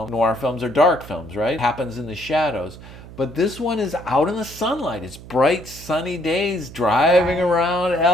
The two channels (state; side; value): noise; right; hum, 16 dB below the sound